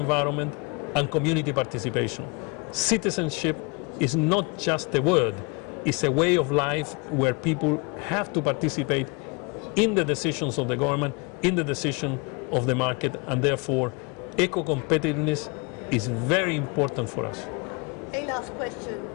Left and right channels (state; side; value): quieter; right; 31.0 dB